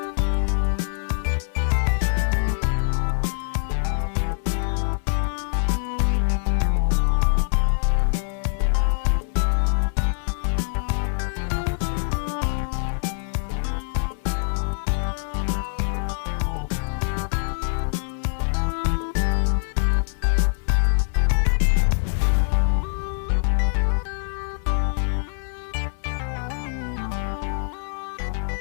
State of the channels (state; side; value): silent; right; 62 dB below the other